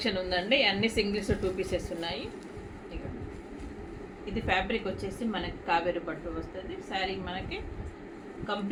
ఉందండి. అన్ని సింగిల్స్ 2 పీసెస్ ఉన్నాయి. ఇది ఫ్యాబ్రిక్ వచ్చేసి మనకి కావేరి పట్టు వస్తుంది. శారీ మనకి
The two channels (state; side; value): identical; both; correlation 1.00